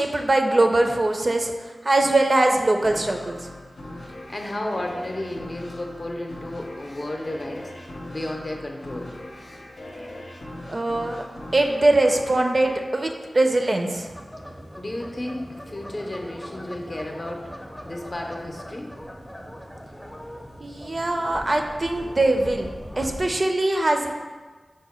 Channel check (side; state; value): both; normal; correlation 0.97